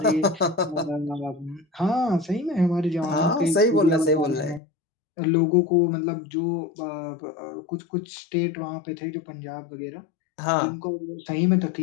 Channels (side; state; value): right; drops out; at 4.6 s